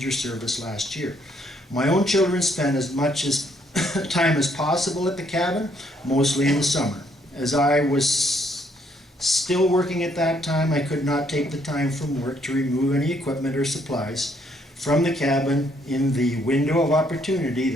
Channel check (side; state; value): both; normal; correlation 0.69